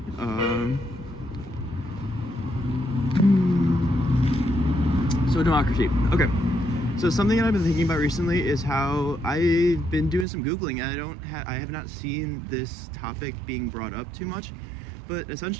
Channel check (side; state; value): left; drops out; at 10.2 s